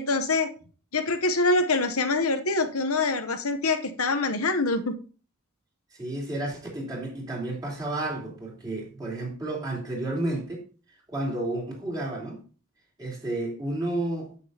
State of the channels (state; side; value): normal; both; correlation 0.03